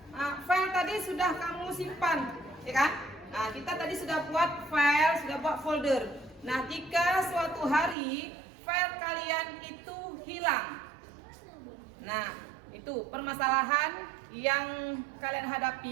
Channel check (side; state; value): left; drops out; at 8.0 s